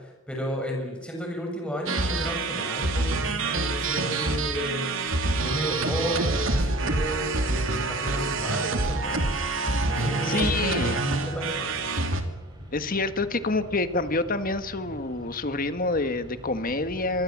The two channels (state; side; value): normal; both; correlation 0.39